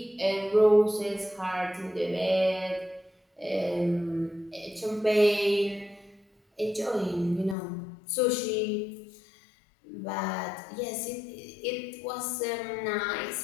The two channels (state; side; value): drops out; right; at 7.6 s